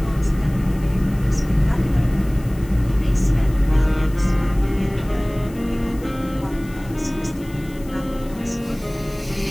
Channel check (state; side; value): noise; left; hiss, 23 dB below the sound